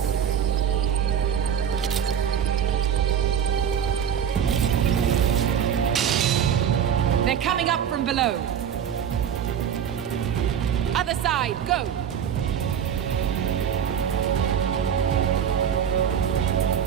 They're coming up from below. Other side, go!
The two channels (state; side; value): quieter; left; 8.5 dB